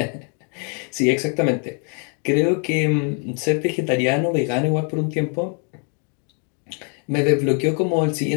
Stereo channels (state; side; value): quieter; right; 39.5 dB